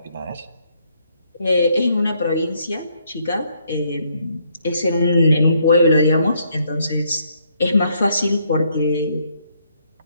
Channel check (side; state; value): both; inverted; correlation -0.71